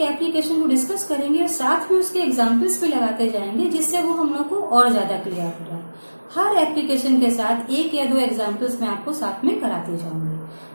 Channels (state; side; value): inverted; both; correlation -1.00